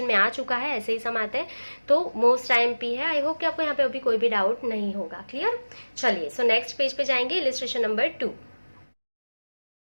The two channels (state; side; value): inverted; both; correlation -1.00